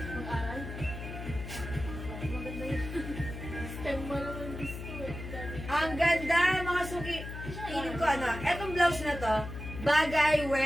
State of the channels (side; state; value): left; noise; hum, 9 dB below the sound